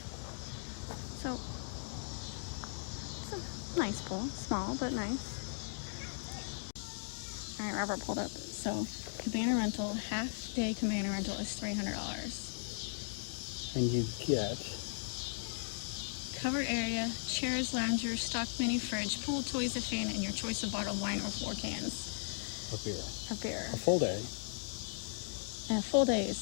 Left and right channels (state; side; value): silent; right; digital silence